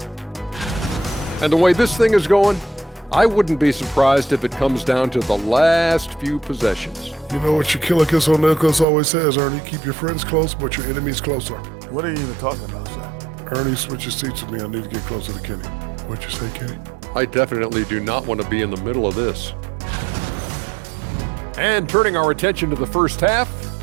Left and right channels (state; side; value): drops out; left; at 8.8 s